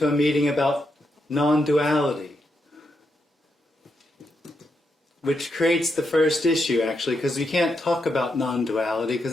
a meeting about non-duality, which creates the first issue actually, because we can't talk about non-duality because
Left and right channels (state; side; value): normal; both; correlation 0.83